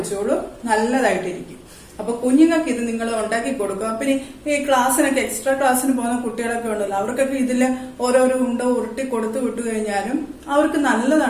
നല്ലതായിട്ടിരിക്കും. അപ്പൊ കുഞ്ഞുങ്ങൾക്ക് ഇത് നിങ്ങൾ ഉണ്ടാക്കി കൊടുക്കുക. പിന്നെ ഈ ക്ലാസ്സിനൊക്കെ എക്സ്ട്രാ ക്ലാസ്സിന് പോകുന്ന കുട്ടികളൊക്കെ ഉണ്ടല്ലോ, അവർക്കൊക്കെ ഇതിൽ ഓരോരോ ഉണ്ട ഉരുട്ടി കൊടുത്തു വിട്ടു കഴിഞ്ഞാലും അവർക്ക്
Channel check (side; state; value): both; identical; correlation 1.00